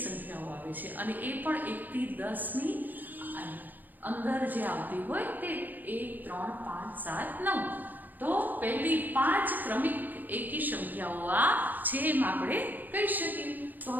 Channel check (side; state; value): left; late; 0.085 ms